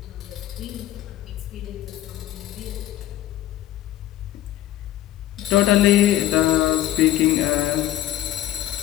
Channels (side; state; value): right; quieter; 13.5 dB